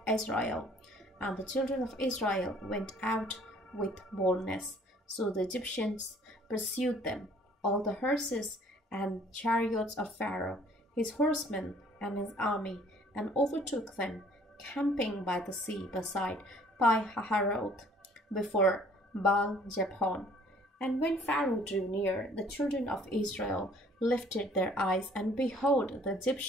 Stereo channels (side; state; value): both; normal; correlation 0.57